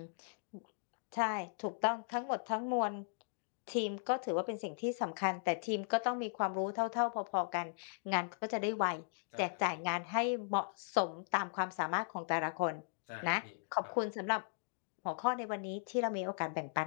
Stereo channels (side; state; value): right; silent; digital silence